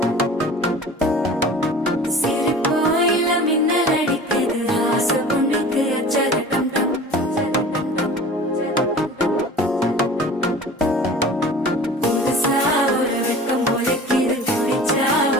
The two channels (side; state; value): both; normal; correlation 0.41